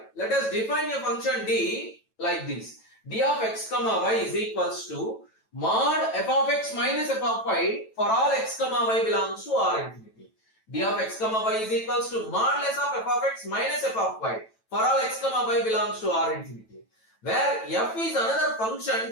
let us define a function D like this. D of x comma y is equals to mod f of x minus f of y for all x comma y belongs to R infinity. D of x comma y is equals to mod less of f of x minus f of y for all x comma y belongs to R infinity. Where f is another function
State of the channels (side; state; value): right; late; 9.1 ms